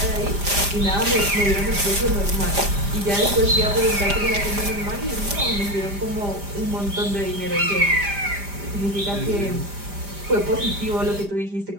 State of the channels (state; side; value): late; left; 5.0 ms